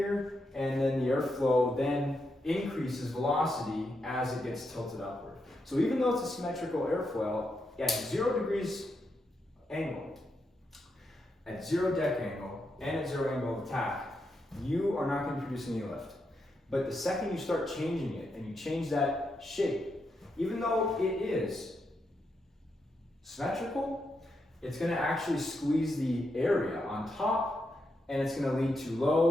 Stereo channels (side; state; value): both; normal; correlation 0.83